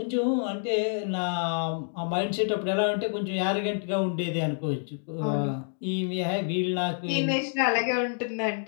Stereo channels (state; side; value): silent; right; digital silence